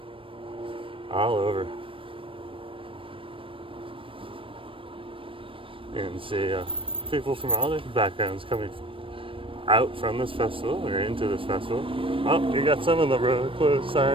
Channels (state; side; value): late; left; 0.25 ms